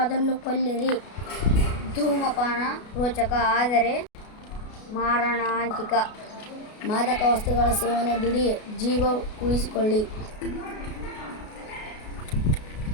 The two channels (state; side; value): late; right; 33 ms